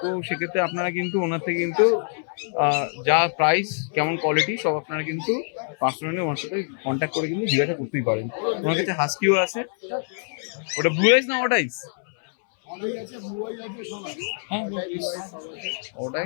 তো সেক্ষেত্রে আপনারা কিন্তু ওনার থেকে কিন্তু যা প্রাইস, কেমন কোয়ালিটি সব আপনারা কিন্তু পার্সোনালি ওনার সাথে কন্ট্যাক্ট করে কিন্তু জিজ্ঞাসা করতেই পারেন। ওনার কাছে হাস্কিও আছে। ওটা ব্লু আইস না ওটা আইস? হ্যাঁ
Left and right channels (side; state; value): right; silent; 60 dB below the other